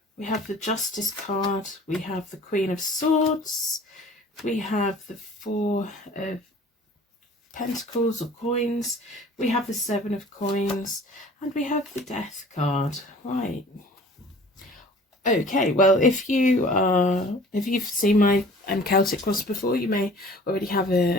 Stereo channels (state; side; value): normal; both; correlation 0.48